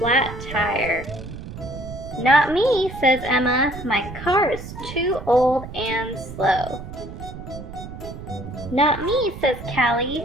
tire. Not me, says Emma. My car is too old and slow. Not me, says Callie.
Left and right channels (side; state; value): right; noise; rumble, 11 dB below the sound